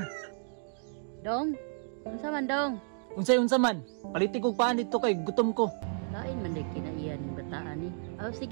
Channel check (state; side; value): silent; left; digital silence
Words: Dong, unsa man dong? Unsa man, paliti kog paan dito kay gutom ko. Lain man day kinaiya ning bataan ni. Oh,